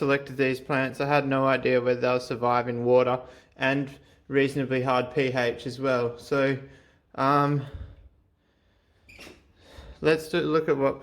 these plants, I had no idea whether they'll survive in water and reasonably hard pH as well. So let's look at what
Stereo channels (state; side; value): identical; both; correlation 1.00